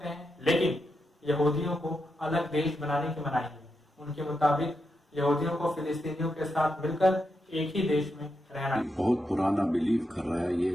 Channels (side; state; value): both; normal; correlation 0.85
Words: हैं, लेकिन यहूदियों को अलग देश बनाने की मनाही है। उनके मुताबिक यहूदियों को फिलिस्तीनियों के साथ मिलकर एक ही देश में रहना। बहुत पुराना बिलीव कर रहा है, ये